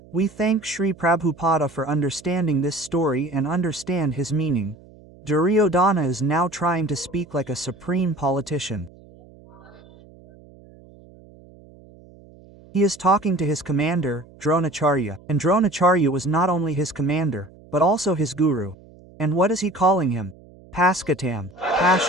we thank Sri Prabhupada for understanding this story and understand his meaning. Duryodana is now trying to speak like a supreme politician. He is talking to his commander, Dronacharya, and Dronacharya was not only his commander, but also his guru. And what is he calling him? Paskatam,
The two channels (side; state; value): right; noise; hum, 24 dB below the sound